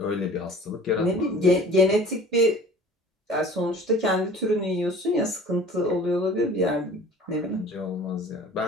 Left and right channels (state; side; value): normal; both; correlation 0.45